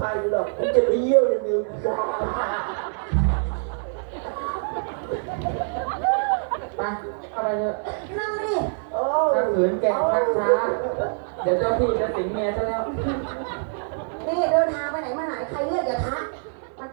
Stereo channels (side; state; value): left; silent; 58 dB below the other